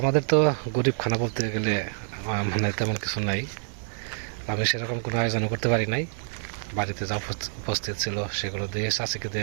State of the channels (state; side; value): silent; left; 57 dB below the other